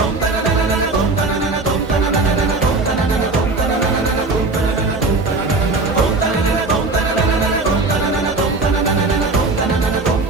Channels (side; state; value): left; quieter; 3.5 dB